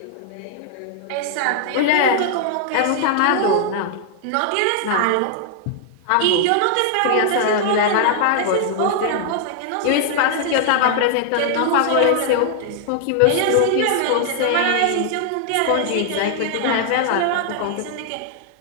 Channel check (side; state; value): both; different; correlation -0.01